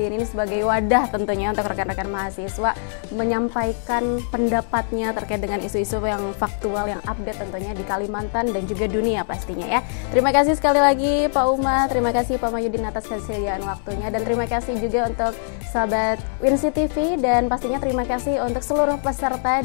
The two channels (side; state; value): right; silent; 61 dB below the other